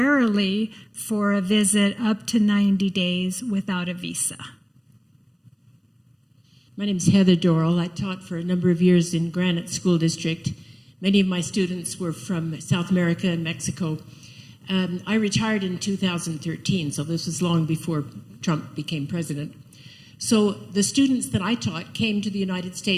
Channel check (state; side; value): identical; both; correlation 1.00